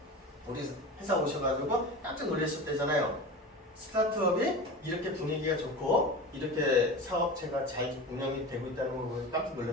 우리 회사 오셔가지고 깜짝 놀랐을 때잖아요. 스타트업이 이렇게 분위기가 좋고 이렇게 사업체가 잘 운영이 되고 있다는 걸 보고 깜짝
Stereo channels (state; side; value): normal; both; correlation 0.31